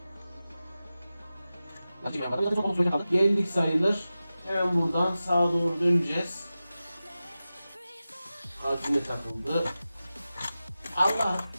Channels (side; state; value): both; inverted; correlation -0.94